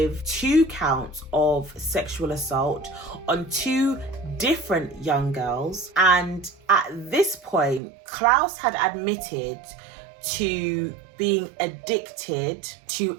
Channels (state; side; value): drops out; left; at 7.8 s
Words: 2 counts of sexual assault on 2 different young girls. And at this point, Klaus had admitted to being addicted